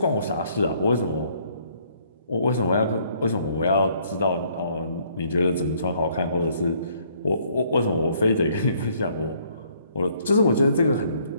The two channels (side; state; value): both; inverted; correlation -0.65